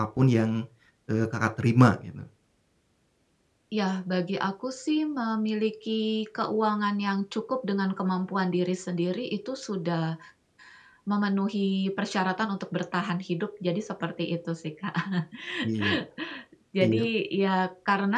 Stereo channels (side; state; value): both; identical; correlation 1.00